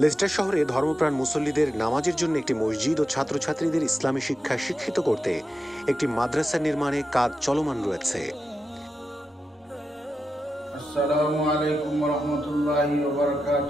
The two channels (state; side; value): normal; both; correlation 0.90